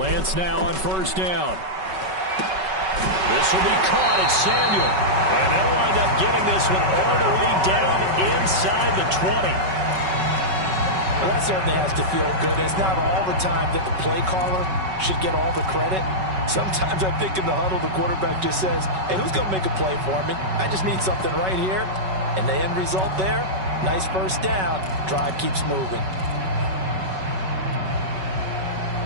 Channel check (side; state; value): left; late; 5.3 ms